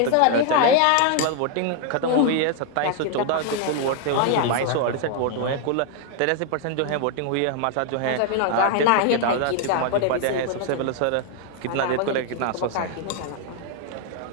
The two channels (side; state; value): both; different; correlation 0.00